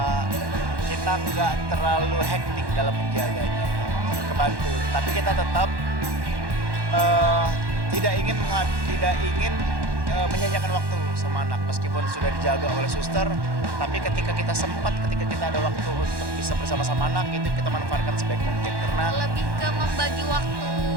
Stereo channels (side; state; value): left; late; 1.1 ms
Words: kita nggak terlalu hektik dalam menjaganya, kebantu. Tapi kita tetap tidak ingin menyanyiakan waktu sama anak meskipun sudah dijaga oleh suster. Tapi ketika kita ada waktu untuk bisa bersama-sama anak, itu kita manfaatkan sebaik mungkin karena lebih ke membagi waktu.